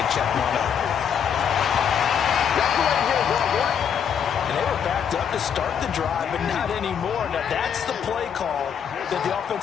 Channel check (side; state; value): right; quieter; 7.9 dB